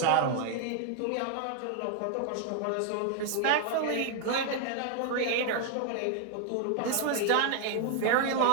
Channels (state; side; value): different; both; correlation 0.00